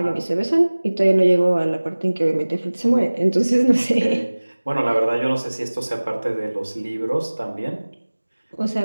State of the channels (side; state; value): both; inverted; correlation -1.00